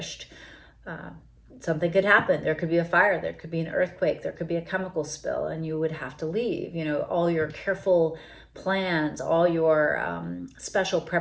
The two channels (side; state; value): both; identical; correlation 1.00